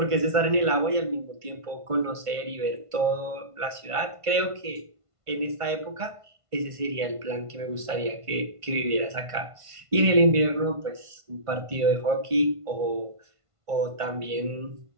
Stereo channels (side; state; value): left; late; 1.5 ms